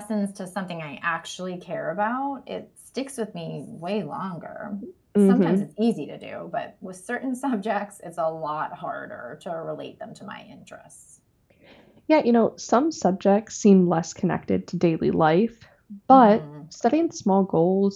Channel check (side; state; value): both; identical; correlation 1.00